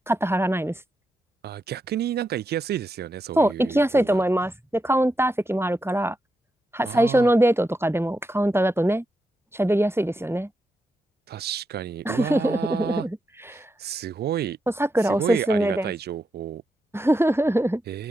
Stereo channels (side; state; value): both; normal; correlation 0.85